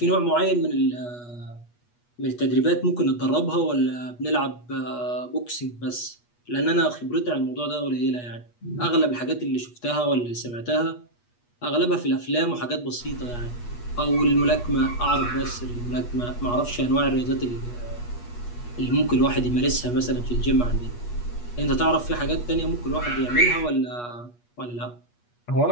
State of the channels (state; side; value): late; right; 8.3 ms